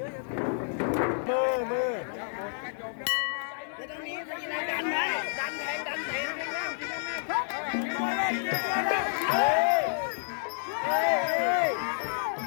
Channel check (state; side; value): silent; right; digital silence